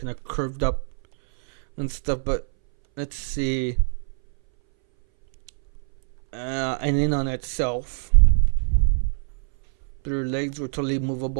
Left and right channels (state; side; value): silent; left; 60 dB below the other